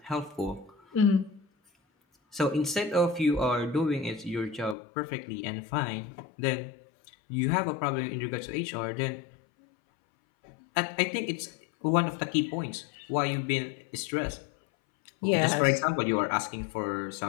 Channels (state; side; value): drops out; right; at 4.8 s